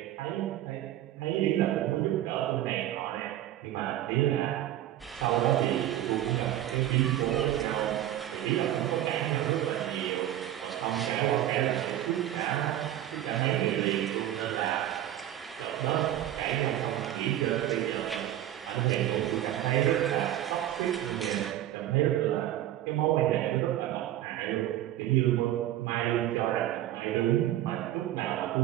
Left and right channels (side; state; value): left; quieter; 12.8 dB